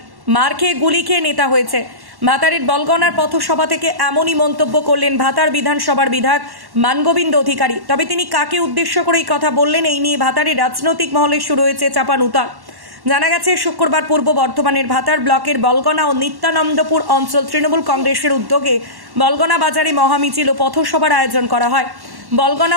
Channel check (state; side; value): late; left; 1.1 ms